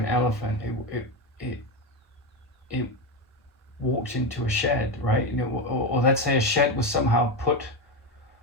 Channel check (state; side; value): normal; both; correlation 0.14